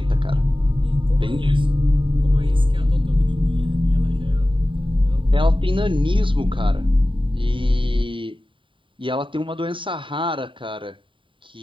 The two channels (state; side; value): late; left; 0.25 ms